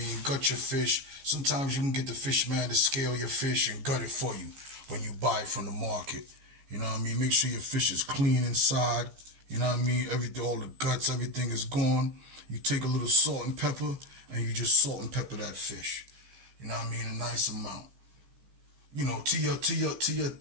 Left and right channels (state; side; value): late; left; 15 ms